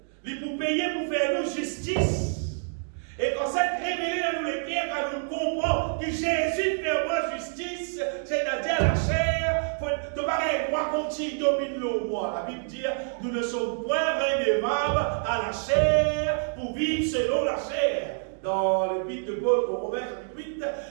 pour faire nous justice. Et quand ça révélé dans nous les cœurs, quand nous comprenons que Jésus fait moi justice, c'est-à-dire la chair, tu pareil, droit continue, domine le moi. La Bible dit, nous ne sommes point redevables à la chair pour vivre selon la chair. Dans l'épître de Paul au Romains, chapitre 8,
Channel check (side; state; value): left; silent; digital silence